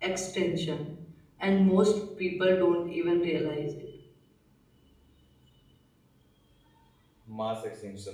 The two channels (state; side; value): identical; both; correlation 1.00